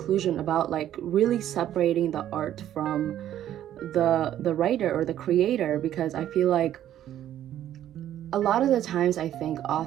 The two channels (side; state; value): left; quieter; 11.6 dB